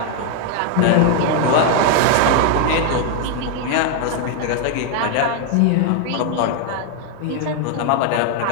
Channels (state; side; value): different; both; correlation 0.01